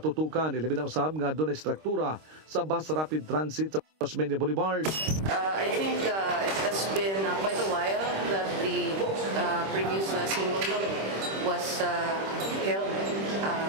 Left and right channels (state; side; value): late; left; 26 ms